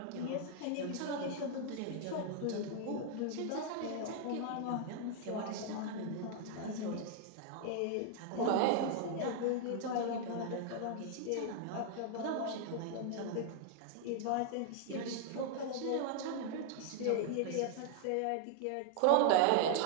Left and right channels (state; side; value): different; both; correlation 0.00